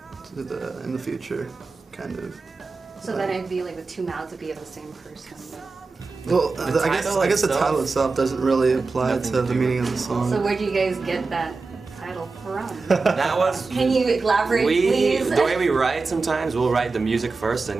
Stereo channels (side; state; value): left; quieter; 4.1 dB